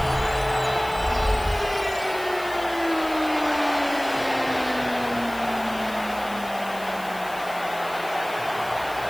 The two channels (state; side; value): noise; left; hiss, 17 dB below the sound